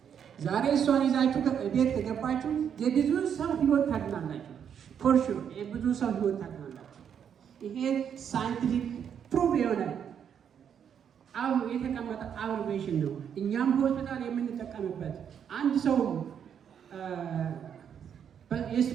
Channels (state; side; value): quieter; left; 8.2 dB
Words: ዛሬ እሷን ይዛችሁ ቤት ከገባችሁ የብዙ ሰው ህይወት ታድናላችሁ። ፎርሹ የብዙ ሰው ህይወት ታድናላችሁ። ይሄ ሳይንቲፊክ ፕሩቭ የሆነ የተቀመጠ አብሬቬሽን ነው። እኛም ሆስፒታል የምንጠቀምበት አንድ ሰው